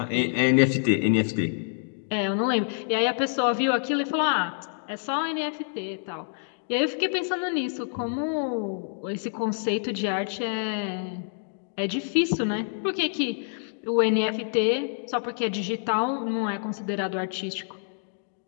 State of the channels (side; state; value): right; silent; digital silence